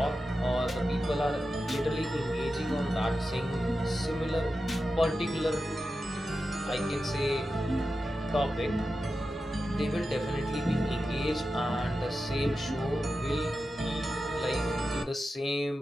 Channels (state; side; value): normal; both; correlation 0.91